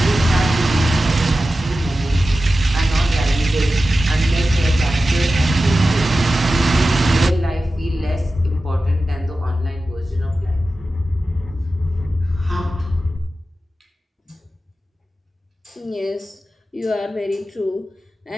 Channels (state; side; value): normal; both; correlation 0.94